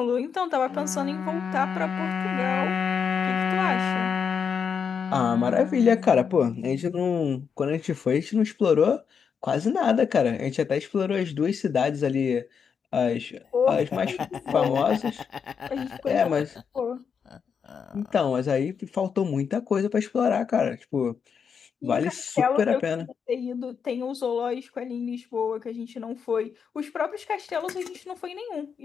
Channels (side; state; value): right; quieter; 6.6 dB